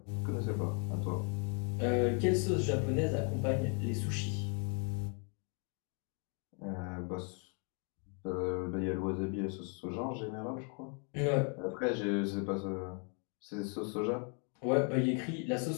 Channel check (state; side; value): quieter; right; 38.8 dB